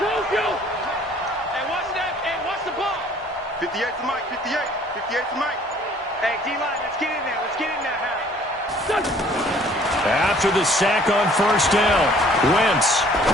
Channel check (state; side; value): normal; both; correlation 0.56